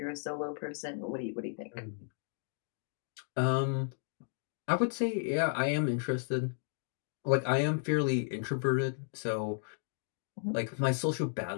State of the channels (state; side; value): silent; right; digital silence